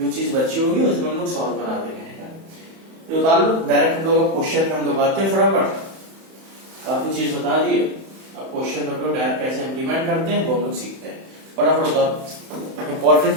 चीज बची होगी उसमें हम लोग सॉल्व करा देंगे। तो उतार लो, डायरेक्ट हम लोग क्वेश्चन में हम लोग आते हैं फटाफट, काफी चीज बता दिए। अब क्वेश्चन हम लोग डायरेक्ट कैसे इम्प्लीमेंट करते हैं वो हम लोग सीखते हैं। फटाफट उतारो, इंपॉर्टेंट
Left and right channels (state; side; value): late; left; 31 ms